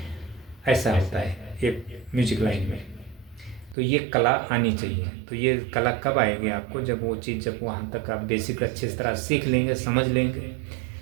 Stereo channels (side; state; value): left; drops out; at 3.8 s